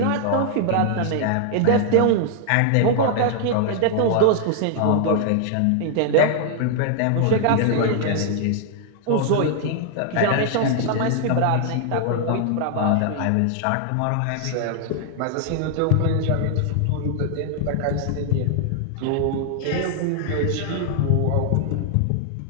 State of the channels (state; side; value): different; both; correlation 0.00